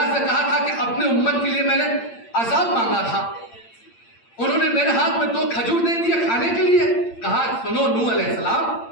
سے کہا تھا کہ اپنے امت کے لیے میں نے عذاب مانگا تھا، انہوں نے میرے ہاتھ میں 2 کھجور دے دیے کھانے کے لیے۔ کہا سنو نوح علیہ السلام،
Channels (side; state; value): right; late; 8.7 ms